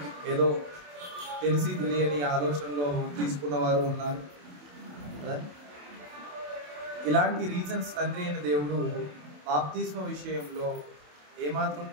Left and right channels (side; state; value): left; late; 27 ms